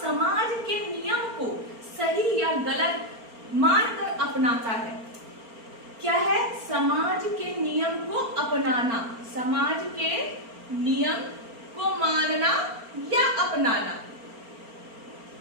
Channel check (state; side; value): late; left; 4.4 ms